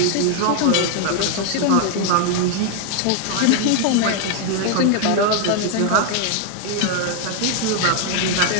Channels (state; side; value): different; both; correlation 0.00